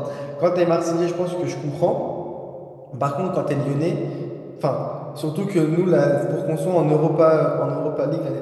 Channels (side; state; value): both; identical; correlation 1.00